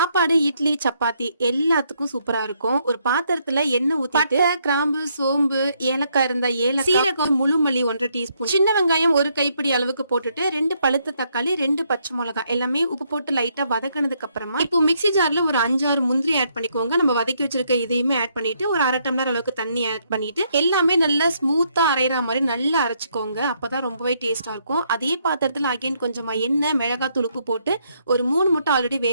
இட்லி, சப்பாத்தி எல்லாத்துக்கும் சூப்பரா இருக்கும். ஒரு பாத்திரத்துல எண்ணெய் ஊத்திட்டு பட்டை, கிராம்பு, சோம்பு, ஏலக்காய் இருந்தா ஏலக்காய், சீரகம், முழு மல்லி 1 டீஸ்பூன், சின்ன வெங்காயம் 1 கைப்பிடி அளவுக்கு போட்டுட்டு 2 பழுத்த தக்காளி, 2 பச்சை மிளகாய் எல்லாமே உப்பு போட்டு லைட்டா வதக்கினதுக்கு அப்புறமா இப்போ மிக்ஸி ஜார்ல ஒரு 5-6 முந்திரி ஆட் பண்ணிக்கோங்க. நம்ம வதக்கி வச்சிருக்க இதையுமே ஆட் பண்ணிட்டு ஒரு 1/2 டம்ளர் அளவுக்கு தண்ணி ஆட் பண்ணிட்டு எல்லாமே நல்லா ஸ்மூத்தா அரைகிற மாதிரி நல்லா அரைச்சுக்கோங்க. அப்பதான் ரொம்பவே டேஸ்டா இருக்கும். அதே பாத்திரத்துல அகைன் கொஞ்சமா எண்ணெய், மிளகாத்தூள், உப்பு போட்டு ஒரு 3 முட்டை ஆல்ரெடி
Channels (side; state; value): both; inverted; correlation -0.73